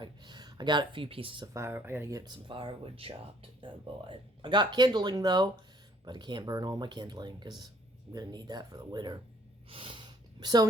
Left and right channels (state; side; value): normal; both; correlation 0.61